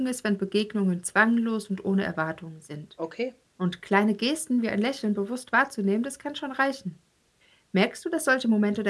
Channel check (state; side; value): identical; both; correlation 1.00